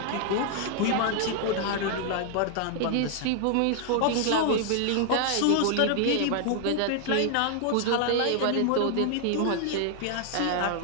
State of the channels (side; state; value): both; different; correlation 0.00